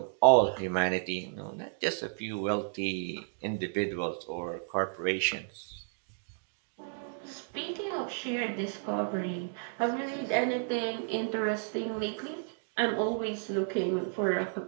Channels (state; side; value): silent; left; digital silence